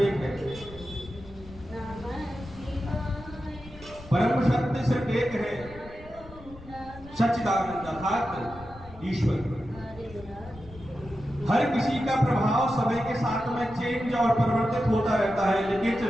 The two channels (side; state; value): left; noise; rumble, 19 dB below the sound